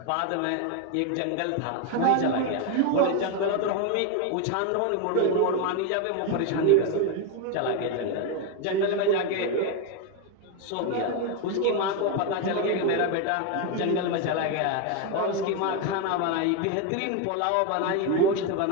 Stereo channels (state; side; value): different; both; correlation 0.02